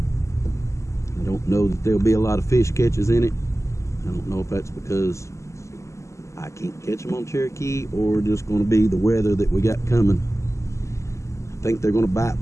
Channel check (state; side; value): late; right; 0.14 ms